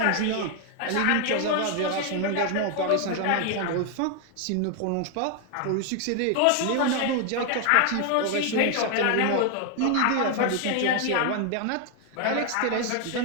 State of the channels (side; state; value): both; different; correlation 0.00